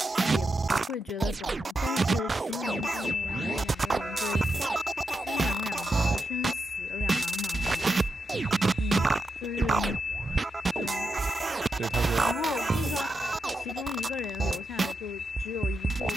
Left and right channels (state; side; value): normal; both; correlation 0.86